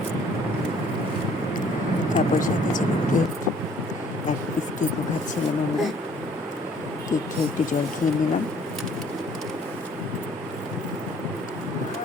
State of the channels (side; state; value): both; normal; correlation 0.59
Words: খাচ্ছিলাম আমরা। কেক খেয়ে একটু জল খেয়ে নিলাম।